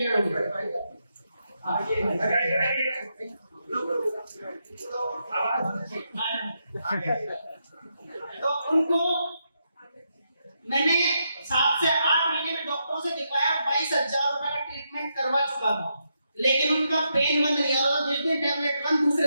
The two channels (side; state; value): both; inverted; correlation -0.82